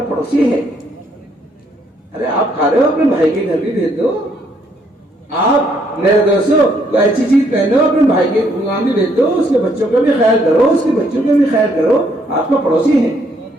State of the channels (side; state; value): both; normal; correlation 0.70